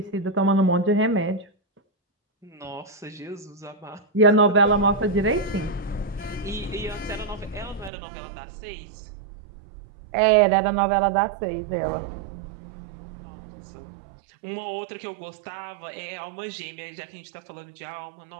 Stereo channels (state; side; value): drops out; left; at 7.9 s